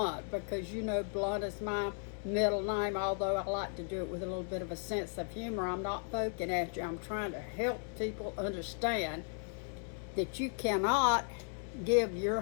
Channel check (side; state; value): right; silent; 54 dB below the other